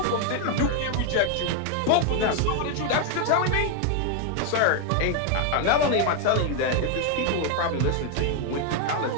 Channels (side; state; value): both; different; correlation 0.00